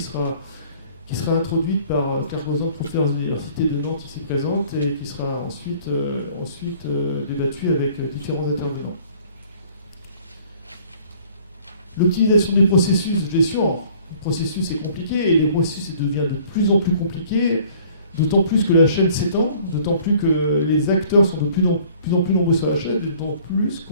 sera introduite par Claire Gozan, professeure de l'Université de Nantes ici présente, et qui sera ensuite débattue avec différents intervenants. L'optimisation des processus de gestion. Le processus est compliqué et les processus devient de plus en plus compliqué, d'autant plus que la chaîne s'étend, d'autant plus que les acteurs sont de plus en plus nombreux sur la chaîne, d'autant plus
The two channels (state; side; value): inverted; both; correlation -0.54